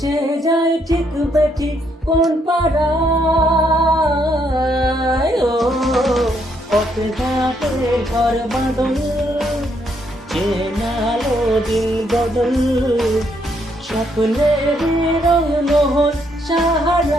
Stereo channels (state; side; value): normal; both; correlation 0.73